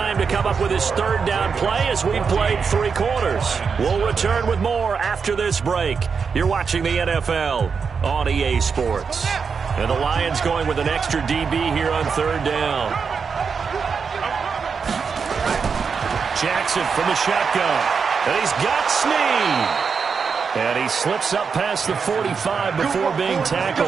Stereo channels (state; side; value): quieter; left; 5.7 dB